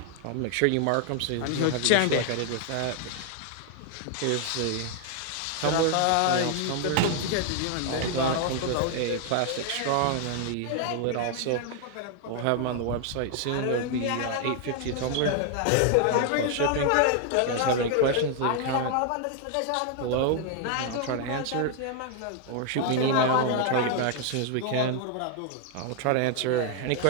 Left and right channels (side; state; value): both; different; correlation 0.00